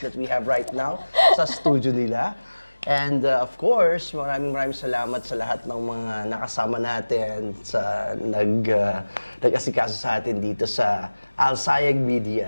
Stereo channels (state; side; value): inverted; both; correlation -1.00